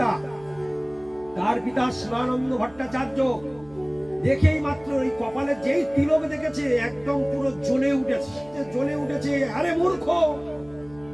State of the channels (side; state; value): right; noise; hum, 24 dB below the sound